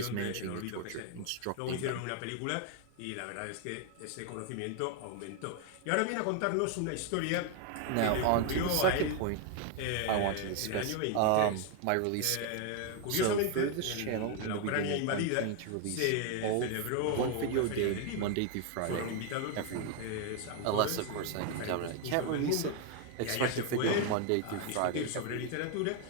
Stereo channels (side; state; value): both; different; correlation 0.01